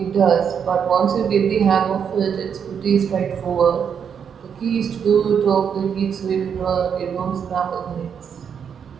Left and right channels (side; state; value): left; quieter; 7.4 dB